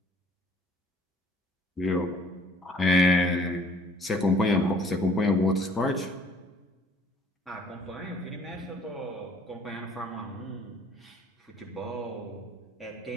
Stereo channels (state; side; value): normal; both; correlation 0.57